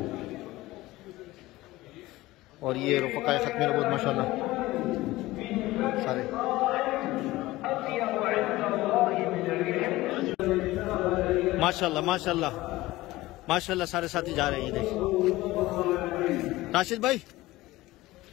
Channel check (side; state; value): right; quieter; 18.3 dB